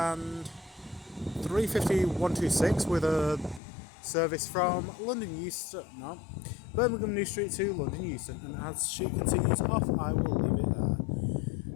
350.126 with a service from Birmingham New Street to London Euston, and as she continues off I will leave it there.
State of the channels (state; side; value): drops out; right; at 3.6 s